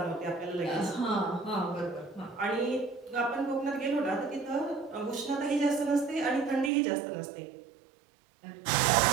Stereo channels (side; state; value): left; drops out; at 6.7 s